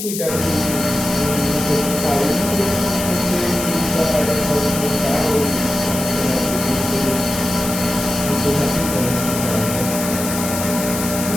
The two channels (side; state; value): left; noise; hiss, 6 dB below the sound